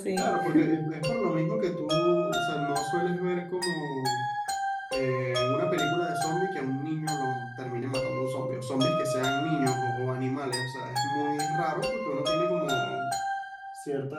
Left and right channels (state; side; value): identical; both; correlation 1.00